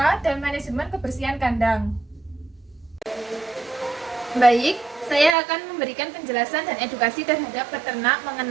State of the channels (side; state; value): left; drops out; at 5.4 s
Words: dan manajemen kebersihan kandang. Baik, saya akan memberikan penjelasan dan edukasi terhadap peternak